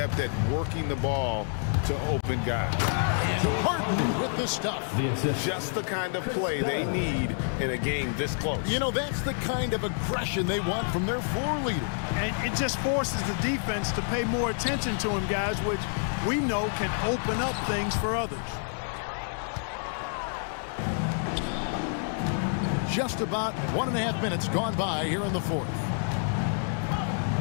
at working the ball to open guys. And Harden with the stuff. Just the kind of play they need in a game this close. You know, that's the kind of aggression they want from their floor leader. And it just forces the defense to pay more attention to him, guys, which we know can open up things for others. Just about 1.5 minutes gone by here in the fourth.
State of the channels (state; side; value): silent; right; digital silence